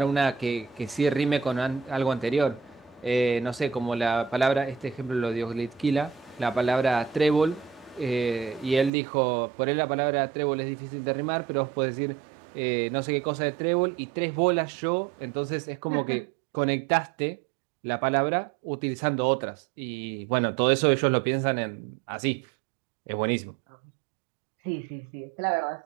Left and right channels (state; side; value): drops out; left; at 8.9 s